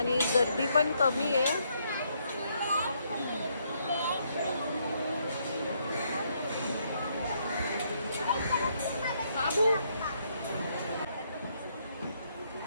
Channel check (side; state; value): both; inverted; correlation -0.73